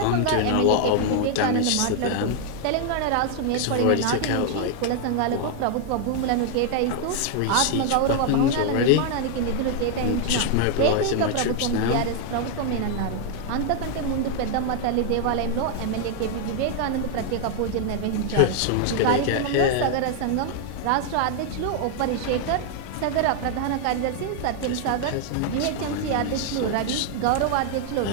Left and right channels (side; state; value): both; different; correlation 0.00